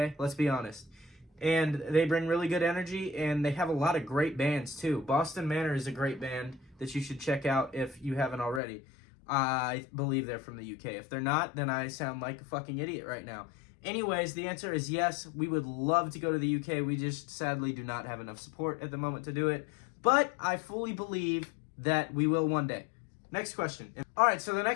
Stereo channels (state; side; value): drops out; right; at 8.6 s